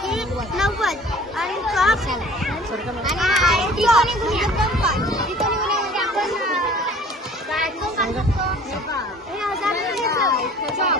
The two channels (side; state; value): both; normal; correlation 0.49